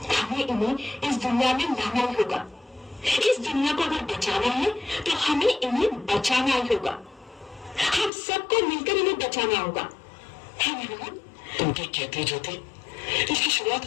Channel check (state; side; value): drops out; right; at 8.1 s